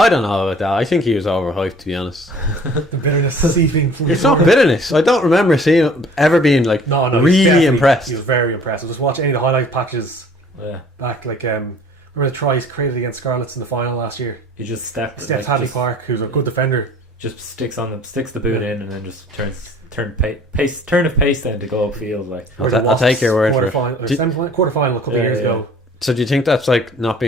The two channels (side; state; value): both; normal; correlation 0.51